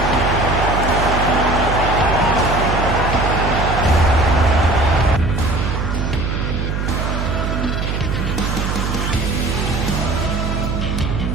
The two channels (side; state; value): right; noise; hum, 2 dB below the sound